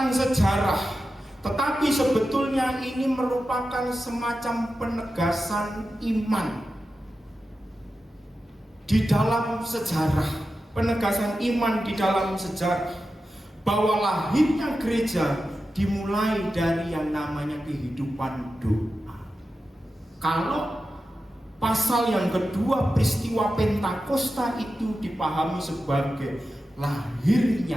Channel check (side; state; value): both; normal; correlation 0.92